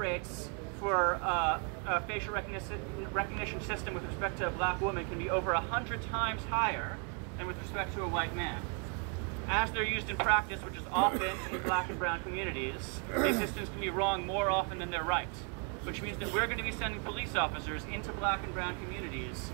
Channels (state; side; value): quieter; left; 38.0 dB